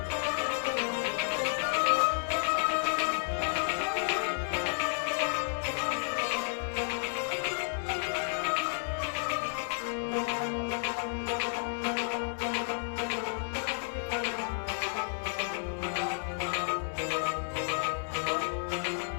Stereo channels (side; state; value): right; silent; digital silence